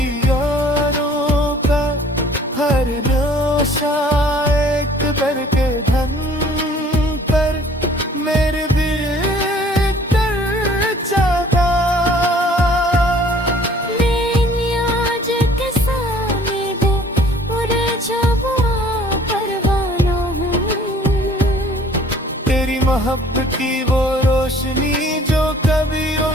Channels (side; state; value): both; normal; correlation 0.55